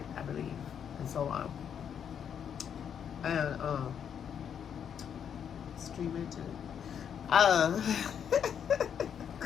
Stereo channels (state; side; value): quieter; right; 8.2 dB